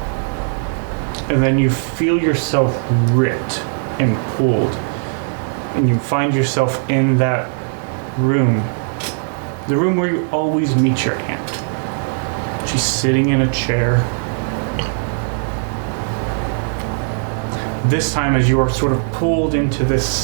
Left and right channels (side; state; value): left; silent; 58 dB below the other